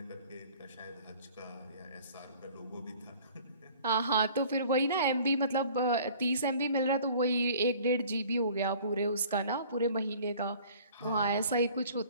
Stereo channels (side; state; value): both; inverted; correlation -0.50